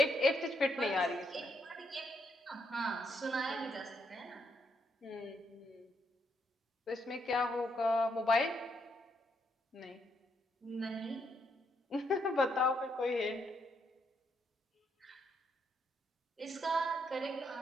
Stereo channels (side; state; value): both; normal; correlation 0.76